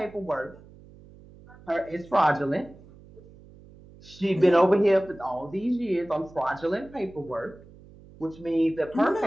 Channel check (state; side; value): noise; right; hum, 22 dB below the sound